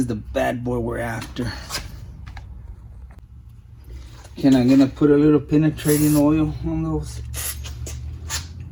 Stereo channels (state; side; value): identical; both; correlation 1.00